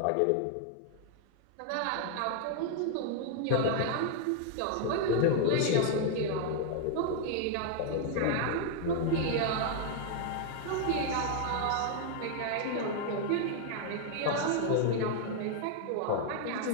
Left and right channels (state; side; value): different; both; correlation 0.00